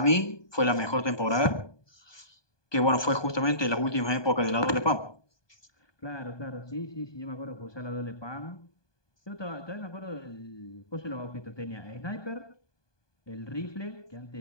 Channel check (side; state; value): right; late; 1.2 ms